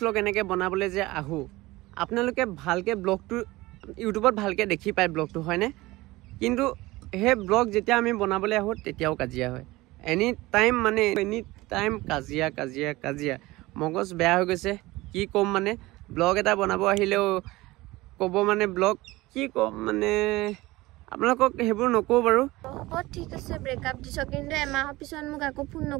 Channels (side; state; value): left; quieter; 19.8 dB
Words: এনেকে বনাবলৈ যে আহো আপোনালোকে ভালকে ব্লগটো ইউটিউবত ভালকে দেখি পায় ব্লগটো হয়নে কিন্তু সেই ব্লগ যেতিয়া আমি বনাবলৈ আহোঁ তেতিয়াও কাজিয়া হয় এনি টাইম কাজিয়া মগজ বেয়া হৈ গৈছে কি ক'ম মানে ব্লগ এটা বনাব আহিলেও ক'ব মানে ব্লগ কি ক'ম মানে আপোনালোকক সেইবোৰ নকওঁ বাৰু ঠিক আছে ব্ৰেকআপ দিছ কিন্তু এমাহৰ পিছত মোক আকৌ ফোন